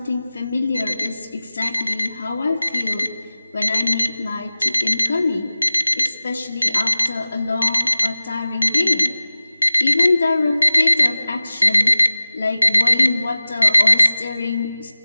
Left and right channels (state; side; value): inverted; both; correlation -0.96